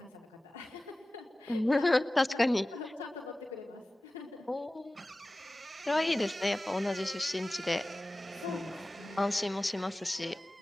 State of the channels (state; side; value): normal; both; correlation 0.96